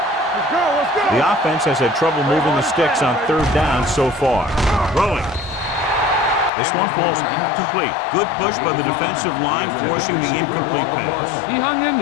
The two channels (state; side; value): drops out; right; at 6.5 s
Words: Let's go. The offense has had trouble moving the sticks on 3rd down so far. Throwing. This one falls incomplete. Good push by the defensive line, forcing the incomplete pass. He hung in